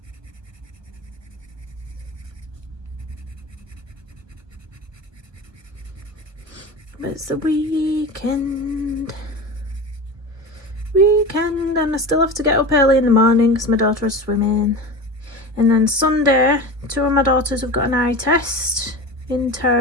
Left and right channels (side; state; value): left; late; 1.4 ms